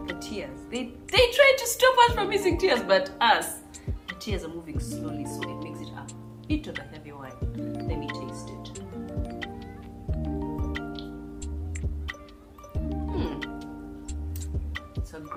they try to stop us from using tears, but the tears are moving slowly, so it makes it a bit of a heavy wine. Let me taste it. It's a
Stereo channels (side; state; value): both; identical; correlation 1.00